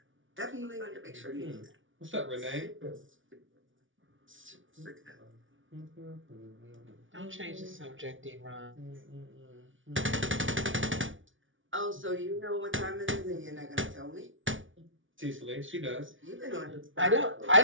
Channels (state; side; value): late; left; 0.56 ms